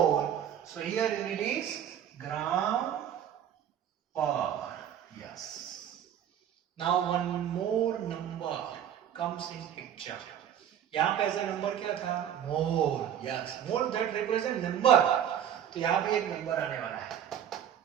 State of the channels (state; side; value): quieter; left; 9.6 dB